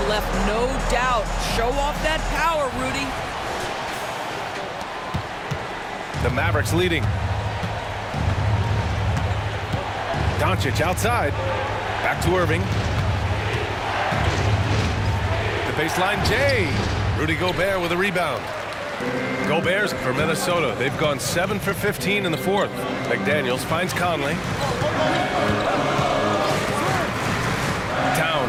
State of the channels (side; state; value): both; identical; correlation 1.00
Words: left no doubt. Show off that power, Rudy. The Mavericks leading. Doncic outside. Back to Irving. The baseline J. Rudy Gobert with a rebound. Gobert's for Minnesota. They've gone 7 for 15 in the 4th. McDaniels finds Conley.